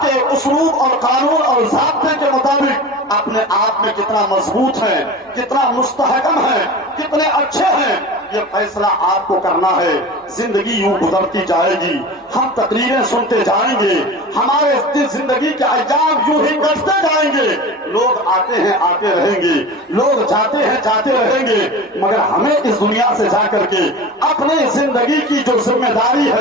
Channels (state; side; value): normal; both; correlation 0.33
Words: کے اسلوب اور قانون اور ضابطے کے مطابق اپنے آپ میں کتنا مضبوط ہیں، کتنا مستحکم ہیں، کتنے اچھے ہیں، یہ فیصلہ آپ کو کرنا ہے۔ زندگی یوں گزرتی جائے گی، ہم تقریریں سنتے جائیں گے، ہمارے زندگی کے ایام یوں ہی کٹتے جائیں گے۔ لوگ آتے ہیں آتے رہیں گے، لوگ جاتے ہیں جاتے رہیں گے، مگر ہمیں اس دنیا سے جا کر کے اپنی زندگی کی جو ذمہ داری